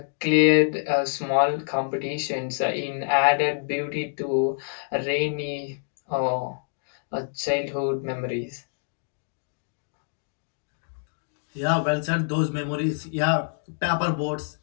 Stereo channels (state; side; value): silent; right; digital silence